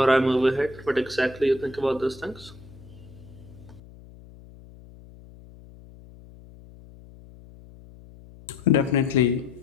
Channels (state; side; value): noise; left; hum, 21 dB below the sound